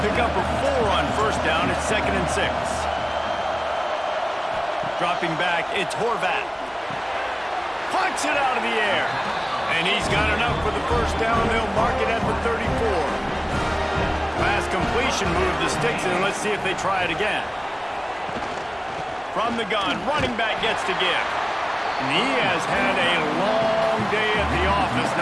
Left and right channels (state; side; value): identical; both; correlation 1.00